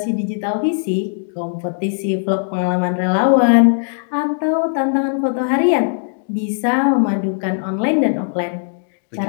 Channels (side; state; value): right; silent; digital silence